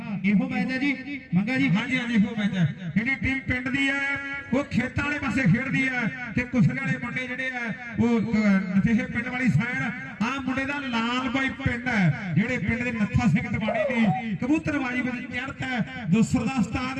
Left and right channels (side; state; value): both; identical; correlation 1.00